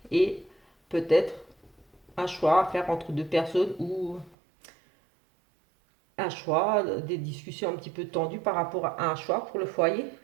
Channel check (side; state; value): left; drops out; at 4.4 s